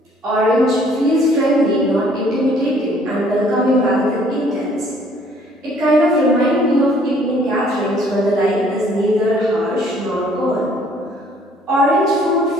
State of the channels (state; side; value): normal; both; correlation 0.60